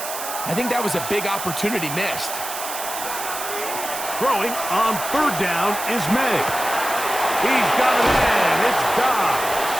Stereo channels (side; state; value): right; noise; hiss, 7 dB below the sound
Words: I think that was a big opportunity missed. Throwing on 3rd down is May. He's got it in. It's Dobbs.